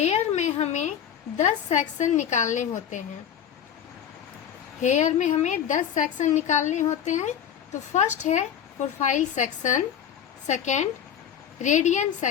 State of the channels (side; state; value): right; quieter; 9.0 dB